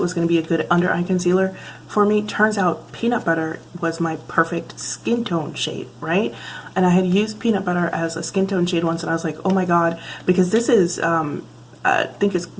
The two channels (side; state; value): both; identical; correlation 1.00